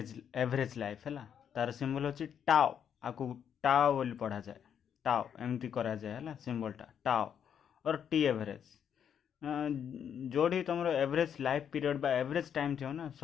एवरेज लाइफ है तार सिंबल अच्छी टाओ आपको टाओ बोली पढ़ा जाए टाओ एमती करा जाए है सिंबलटा टाओ और टी एवरेज जोड़ी तुम एवरेज लाइफ पीरियड बा एवरेज टाइम थी ना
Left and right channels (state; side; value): quieter; right; 8.4 dB